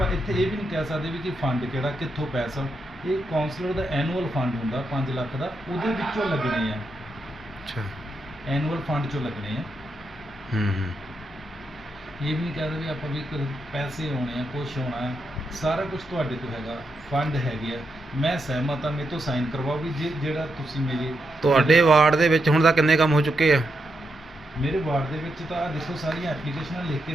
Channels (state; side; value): normal; both; correlation 0.83